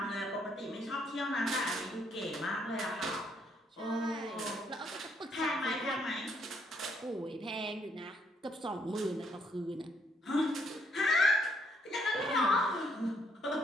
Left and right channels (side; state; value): both; normal; correlation 0.70